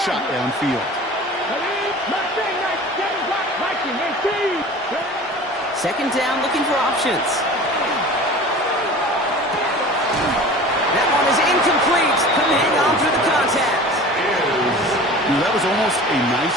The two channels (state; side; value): normal; both; correlation 0.40